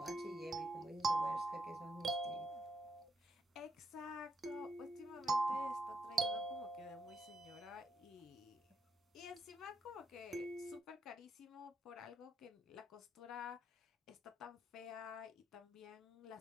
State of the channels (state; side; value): normal; both; correlation 0.77